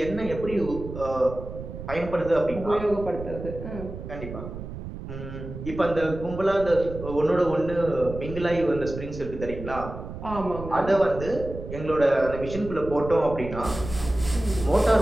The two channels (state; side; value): noise; right; rumble, 10 dB below the sound